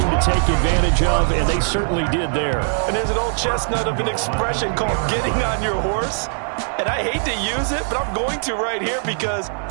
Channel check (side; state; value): left; silent; 61 dB below the other